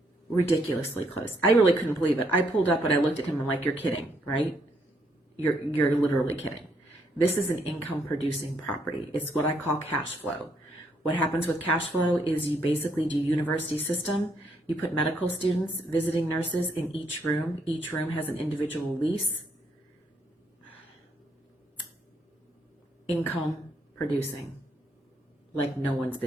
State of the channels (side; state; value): both; normal; correlation 0.73